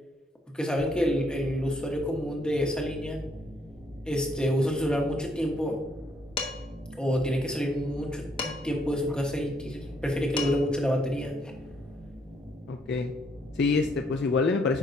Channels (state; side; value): normal; both; correlation 0.70